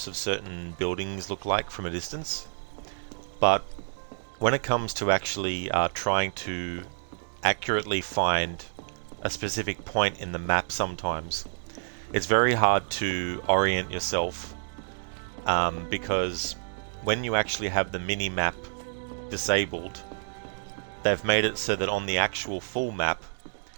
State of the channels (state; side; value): silent; left; digital silence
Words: of certain buildings look like from a distance. But when it comes to actually trying to accurately find a specific point in the map sometimes, it's very hard to orient yourself because when you actually have the mini-map disabled, they've made it so that on the actual full map,